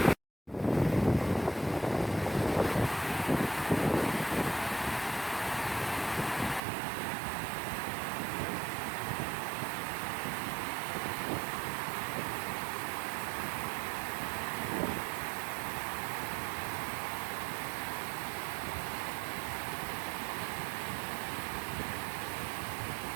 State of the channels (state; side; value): drops out; left; at 6.6 s